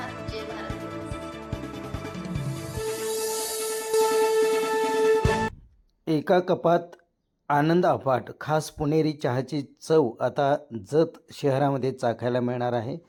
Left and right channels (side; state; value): both; identical; correlation 1.00